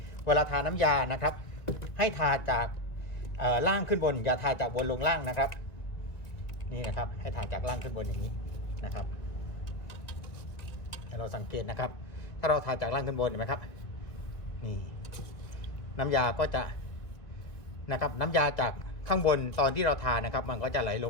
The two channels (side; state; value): right; late; 2.2 ms